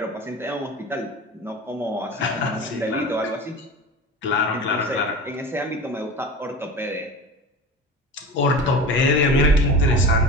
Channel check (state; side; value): normal; both; correlation 0.32